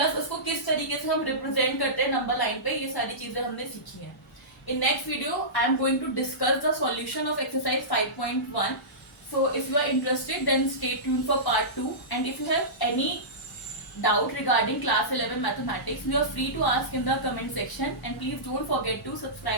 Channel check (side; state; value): both; normal; correlation -0.19